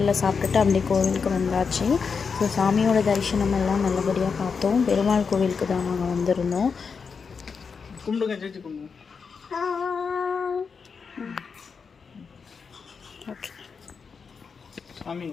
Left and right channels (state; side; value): quieter; right; 5.6 dB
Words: சாப்பிட்டுட்டு அப்படியே கோவிலுக்கு வந்தாச்சு. ஸோ சாமியோட தரிசனம் எல்லாம் நல்லபடியாக பார்த்தோம். பெருமாள் கோவிலுக்கு தான் நாங்கள் வந்திருந்தோம். கும்பிடுங்க, சேர்த்து கும்பிடுங்க. ஓகே சாமி